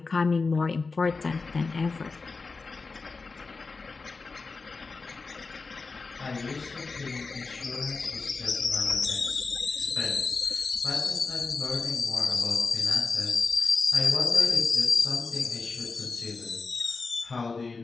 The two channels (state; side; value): quieter; right; 4.2 dB